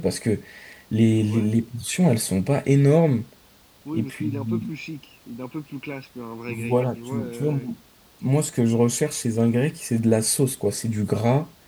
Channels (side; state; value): both; identical; correlation 1.00